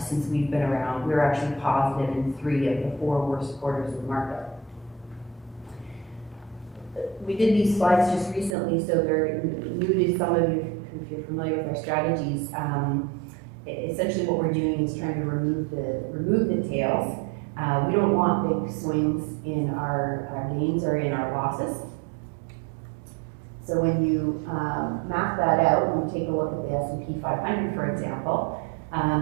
we've been around, we're actually positive in 3 of the 4 worst quarters of the market. We did these slides just recently, so they're new to some of you if you're familiar with our strategies. Essentially what we're doing is trying to remove the tails. We don't want big swings in our gains or in our losses. So when you map that out, and you take a look at the S&P 500, for example,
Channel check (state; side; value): drops out; left; at 8.6 s